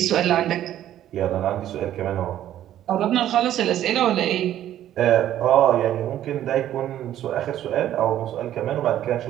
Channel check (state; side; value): quieter; left; 12.0 dB